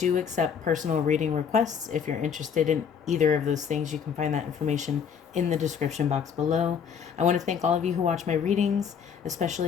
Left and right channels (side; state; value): right; quieter; 7.1 dB